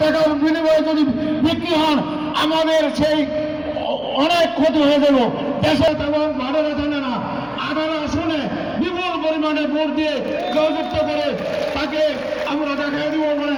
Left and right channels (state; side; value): noise; left; hum, 26 dB below the sound